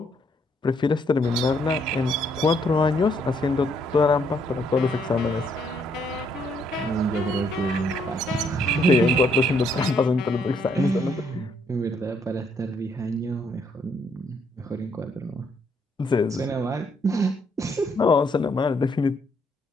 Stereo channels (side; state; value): both; normal; correlation 0.71